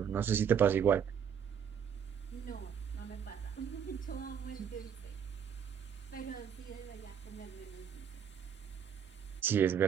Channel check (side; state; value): left; quieter; 8.0 dB